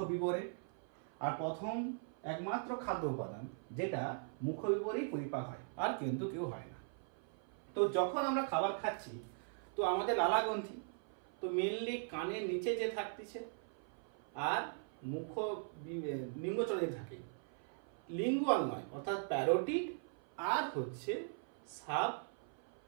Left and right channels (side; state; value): left; silent; 51 dB below the other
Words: আর প্রথম একমাত্র খাদ্য উপাদান যেটা মুখবিবরেই পরিপাক হয়, আর কিন্তু কেউ হয় না। তো যখন আমরা খাবার খাচ্ছি তো আমাদের লালা গ্রন্থি তো মেনলি কানের নিচে যে থাকতেছে আর মুখ নিম্নচলে থাকে, লিঙ্গুয়াল নয়, অর্থাৎ প্যারোটিড আর হচ্ছে সাব